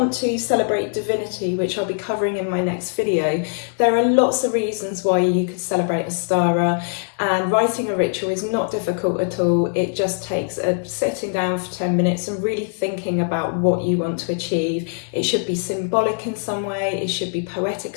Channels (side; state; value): right; silent; 64 dB below the other